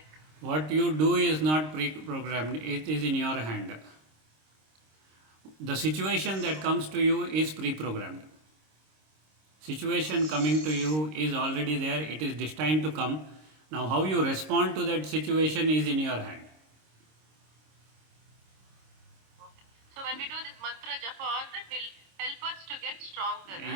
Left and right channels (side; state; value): left; late; 26 ms